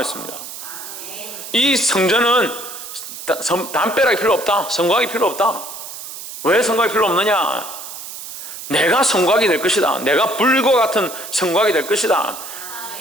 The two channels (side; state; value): right; noise; hiss, 11 dB below the sound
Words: 이 성전은 담벼락이 필요 없다. 성곽이 필요 없다. 왜 성곽이 필요 없느냐? 내가 성곽이 될 것이다. 내가 불과 같은 성곽이 될 것이다.